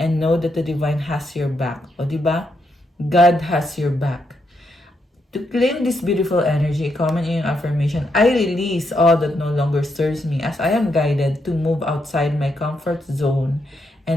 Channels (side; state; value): both; normal; correlation 0.80